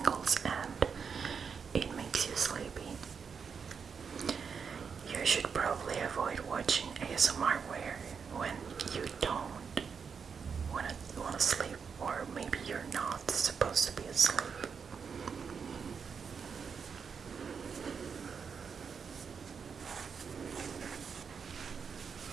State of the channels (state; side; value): quieter; left; 6.2 dB